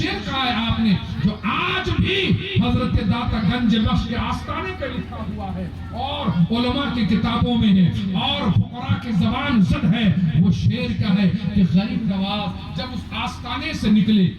کہا ہے آپ نے جو آج بھی حضرت داتا گنج بخش کے آستانے پہ لکھا ہوا ہے اور علماء کی کتابوں میں ہے اور فقراء کی زبان زد ہے. وہ شعر کیا ہے کہ غریب نواز جب اس آستانے سے نکلے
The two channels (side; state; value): both; identical; correlation 1.00